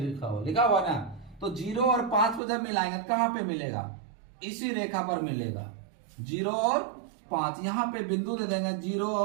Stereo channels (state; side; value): drops out; left; at 2.4 s